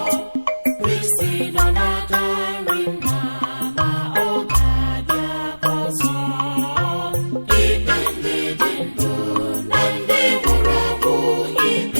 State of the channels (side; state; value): both; inverted; correlation -1.00